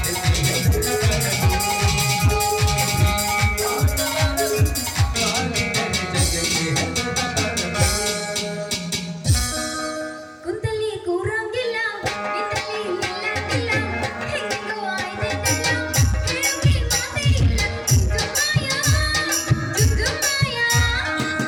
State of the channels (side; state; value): both; identical; correlation 1.00